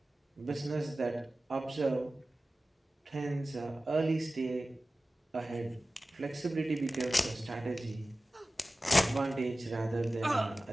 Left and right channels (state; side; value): normal; both; correlation 0.96